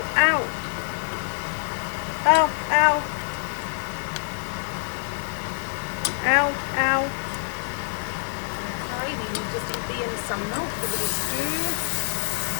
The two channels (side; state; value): right; silent; digital silence